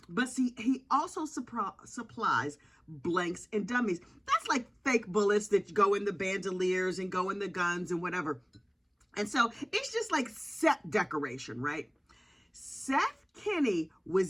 But see, he also supplies blanks and dummies. That's like fake bullets that go in the bandoliers and go in the guns and whatever. And so it's just like set decoration, right? Seth Kinny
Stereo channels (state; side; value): identical; both; correlation 1.00